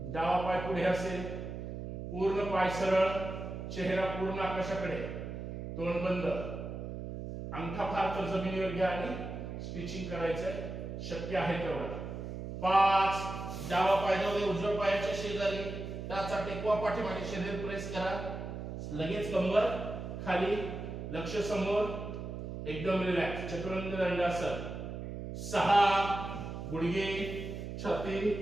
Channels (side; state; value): right; noise; hum, 7 dB below the sound